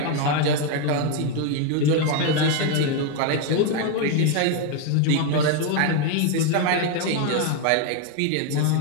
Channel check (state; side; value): different; both; correlation 0.01